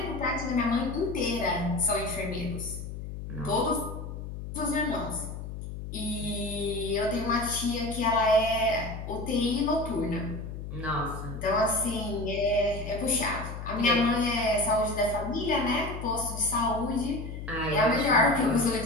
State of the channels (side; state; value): left; noise; hum, 8 dB below the sound